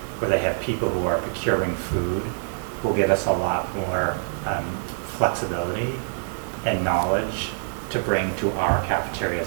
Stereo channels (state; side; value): silent; left; digital silence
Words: where they have people who are procuring food, will give us a lot more flexibility and knowledge to bring to our